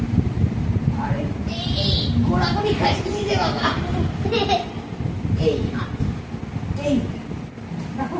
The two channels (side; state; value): both; identical; correlation 1.00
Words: আরে এই ঘোরাঘুরি খাইছে নিজে বাবা। এই এই রাখো,